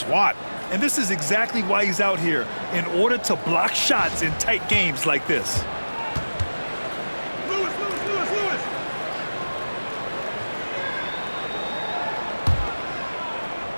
And this is exactly why he's out here, in order to block shots in tight games like this. Lewis.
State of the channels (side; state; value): both; inverted; correlation -1.00